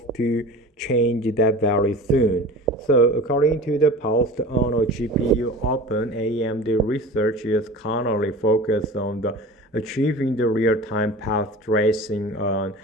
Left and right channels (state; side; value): normal; both; correlation 0.37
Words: to change that very soon. So according to the post on GPU Open, AMD research is currently focused on achieving the real-time path tracing on